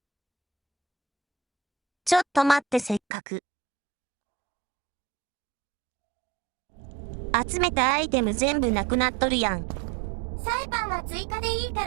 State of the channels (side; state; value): left; drops out; at 3.0 s